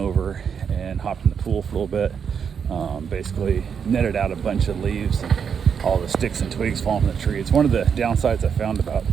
and hopped in the pool for a little bit, basically netted out a bunch of leaves and all the sticks and twigs falling from the tree. It's one of the downsides I found about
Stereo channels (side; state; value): left; quieter; 7.0 dB